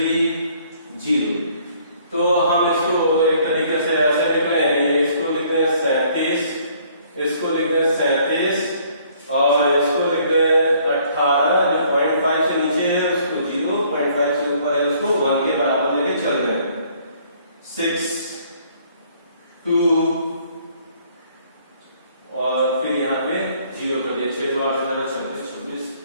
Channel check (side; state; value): both; inverted; correlation -0.61